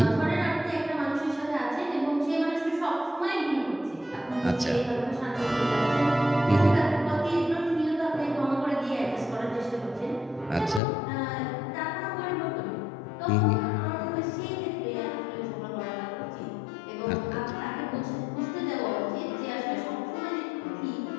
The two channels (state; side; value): drops out; right; at 10.8 s